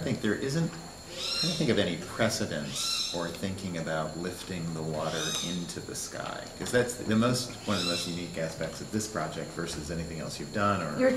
I think there isn't, I don't think of any precedence or thinking about lifting the water into the sky, because that's one of the most unique aspects of this project versus anything else you've done. Or you're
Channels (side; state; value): both; identical; correlation 1.00